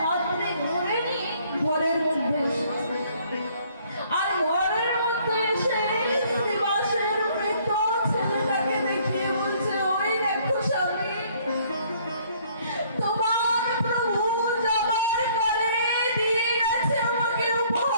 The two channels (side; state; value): both; inverted; correlation -0.61